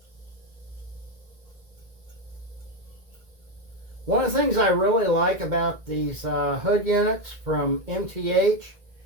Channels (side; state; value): left; late; 1.9 ms